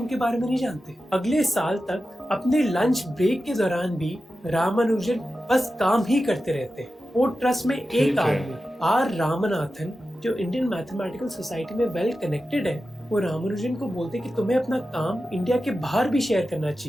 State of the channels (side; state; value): both; normal; correlation 0.92